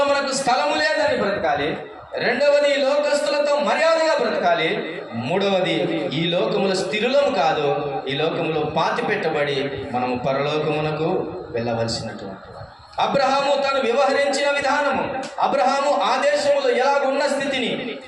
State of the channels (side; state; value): both; identical; correlation 1.00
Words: మనకు స్థలము లేదని బ్రతకాలి. రెండవది, ఈ లోకస్తులతో మర్యాదగా బ్రతకాలి. మూడవది, ఈ లోకములో స్థిరులము కాదు, ఈ లోకములో పాతి పెట్టబడి మనము పరలోకమునకు వెళ్ళవలసినటువంటి. అబ్రహాము తను వ్యవహరించిన విధానము, అబ్రహాము ఆ దేశములో ఎలాగున్న స్థితిని,